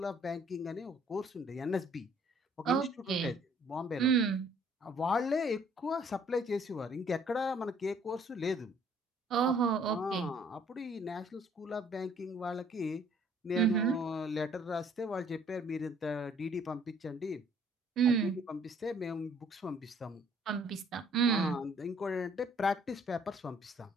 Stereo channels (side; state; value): both; normal; correlation 0.60